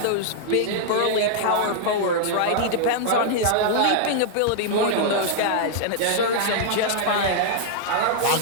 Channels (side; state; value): both; different; correlation -0.01